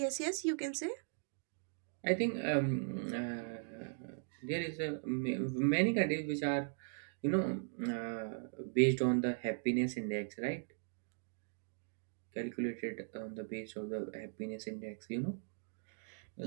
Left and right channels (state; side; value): silent; left; digital silence